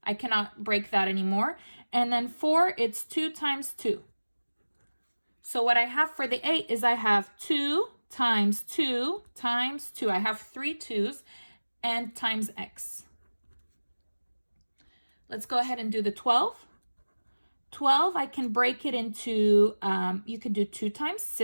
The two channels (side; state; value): both; inverted; correlation -1.00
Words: I cannot break that anymore. And then 4, it's 2 times 2. So what I have for the 8 is I have 2 times 2 times 2. I have 3 2's and times x. Let's go ahead and do the 12. 12, I can break it into, you could do 2 times